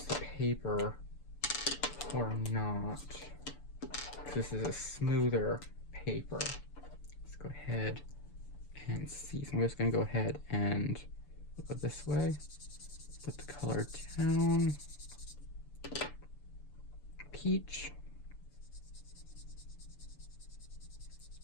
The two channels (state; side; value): late; right; 6.9 ms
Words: the paper or not. This is a smoother paper. Let's go ahead and see. So I'm just going to go ahead and go this way. Put the color down. Peach.